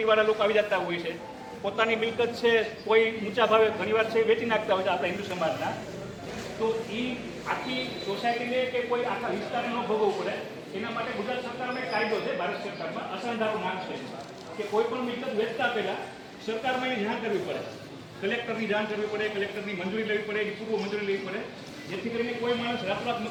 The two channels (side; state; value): both; identical; correlation 1.00